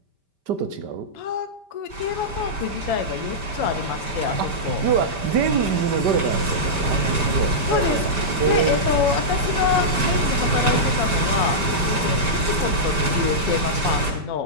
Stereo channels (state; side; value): late; left; 5.1 ms